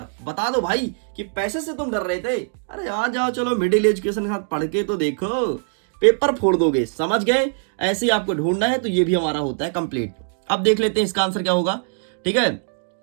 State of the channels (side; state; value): left; silent; digital silence